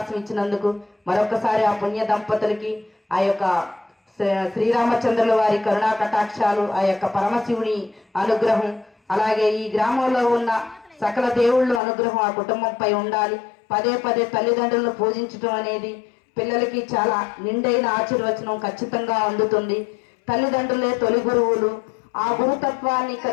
ఇచ్చినందుకు మరొకసారి ఆ పుణ్య దంపతులకి ఆ యొక్క శ్రీరామచంద్రుల వారి కరుణా కటాక్షాలు, ఆ యొక్క పరమశివుని అనుగ్రహం, అలాగే ఈ గ్రామంలో ఉన్న సకల దేవుళ్ళ అనుగ్రహం ఆ కుటుంబంపై ఉండాలి. పదే పదే తల్లిదండ్రులను పూజించడం అనేది పిల్లలకి చాలా నిండైన ఆశీర్వచనం ఖచ్చితంగా అందుతుంది. తల్లిదండ్రులే తొలి గురువులు. ఆ గురుతత్వాన్ని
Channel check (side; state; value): right; drops out; at 11.8 s